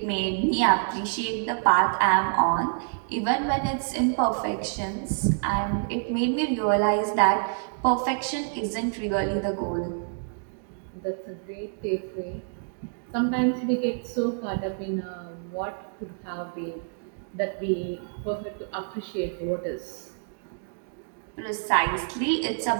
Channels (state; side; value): silent; left; digital silence